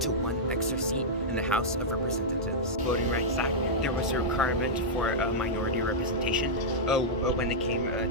to one extra seat in the House of Representatives. Voting Rights Act, there was a requirement for a minority representation when it came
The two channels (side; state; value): both; normal; correlation -0.08